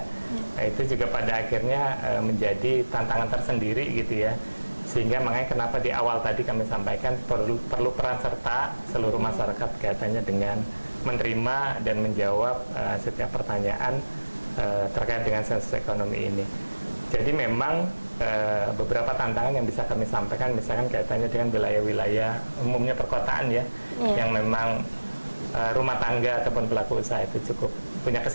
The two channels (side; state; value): both; inverted; correlation -1.00